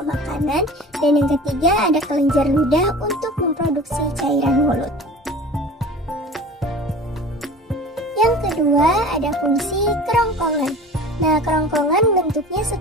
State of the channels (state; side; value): normal; both; correlation 0.40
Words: makanan, dan yang ketiga ada kelenjar ludah untuk memproduksi cairan mulut. Yang kedua ada fungsi kerongkongan. Nah, kerongkongan bentuknya